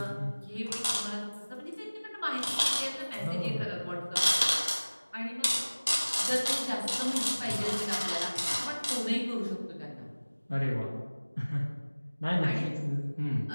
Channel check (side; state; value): both; inverted; correlation -1.00